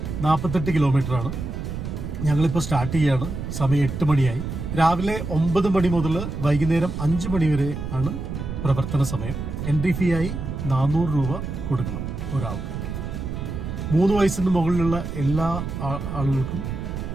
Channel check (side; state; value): right; noise; rumble, 5 dB below the sound